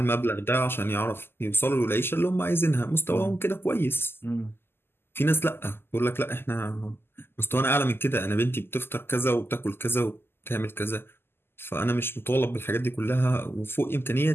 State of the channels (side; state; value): right; late; 0.11 ms